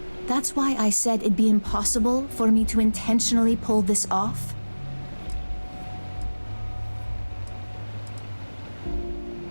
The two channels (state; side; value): inverted; both; correlation -1.00